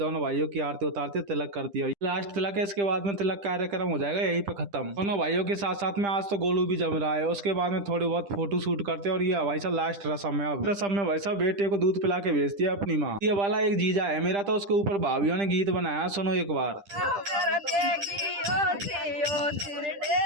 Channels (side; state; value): left; late; 10 ms